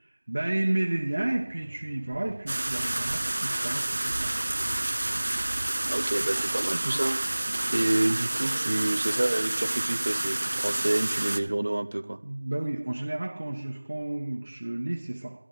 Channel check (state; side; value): inverted; both; correlation -1.00